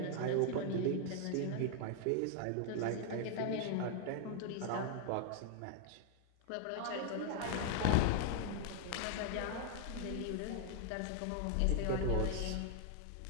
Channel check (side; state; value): both; different; correlation 0.00